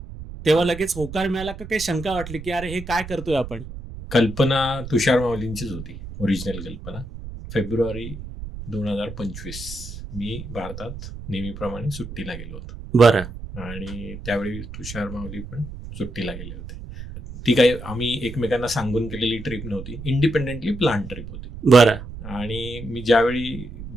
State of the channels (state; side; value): noise; right; rumble, 11 dB below the sound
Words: तेव्हा लगेच होकार मिळाला का काही शंका वाटली की अरे हे काय करतोय आपण? कल्पना तुषार माऊलींचीच होती, ओरिजिनल कल्पना. फेब्रुवारी 2025 मी भारतात नेहमीप्रमाणे सुट्टीला गेलो होतो. बरं. आणि त्यावेळी तुषार माऊली पण सुट्टीला गेले होते. ती काही आम्ही एकमेकांना सांगून केलेली ट्रिप नव्हती, इंडिपेंडेंटली प्लॅन ट्रिप होती. बरं. आणि मी